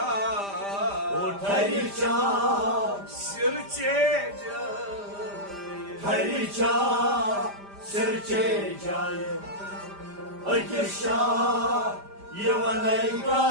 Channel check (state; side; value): late; left; 5.0 ms